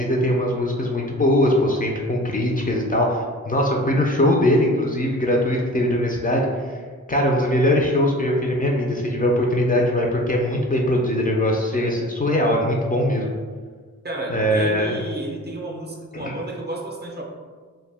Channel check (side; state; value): both; normal; correlation 0.41